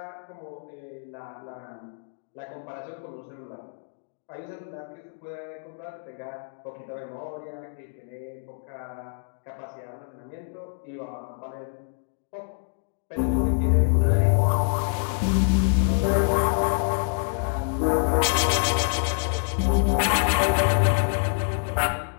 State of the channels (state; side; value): silent; right; 61 dB below the other